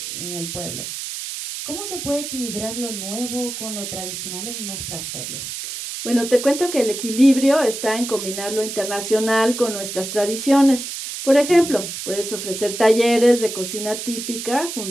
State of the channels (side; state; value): right; noise; hiss, 7 dB below the sound